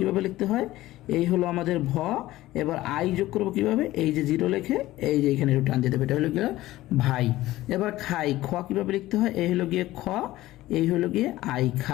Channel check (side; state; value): right; quieter; 16.4 dB